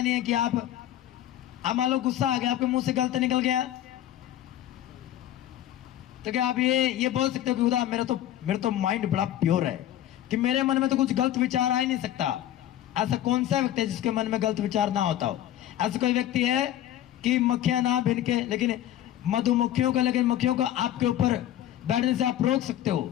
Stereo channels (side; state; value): right; quieter; 12.4 dB